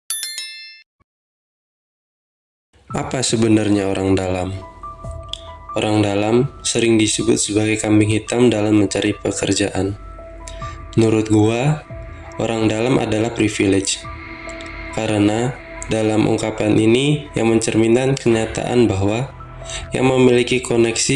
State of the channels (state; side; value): identical; both; correlation 1.00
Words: Apa sebenarnya orang dalam? Orang dalam sering disebut sebagai kambing hitam dalam mencari pekerjaan. Menurut gua, orang dalam adalah privilege. Karena dalam ungkapan ini yang mencerminkan kenyataan bahwa yang memiliki